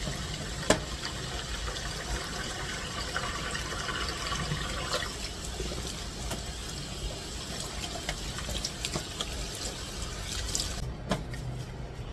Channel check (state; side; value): identical; both; correlation 1.00